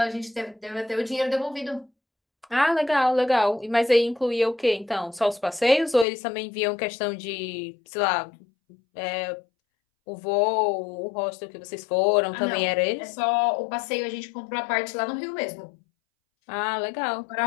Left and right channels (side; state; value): right; drops out; at 6.1 s